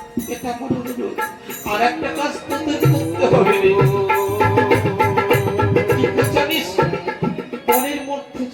এটা আমার অনুরোধ, আর একটা কাজ তোদের করতে হবে। জানিস মনের মধ্যে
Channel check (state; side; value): identical; both; correlation 1.00